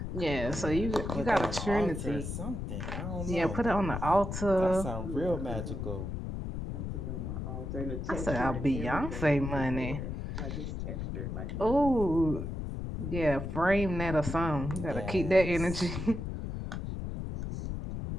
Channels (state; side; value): noise; left; rumble, 5 dB below the sound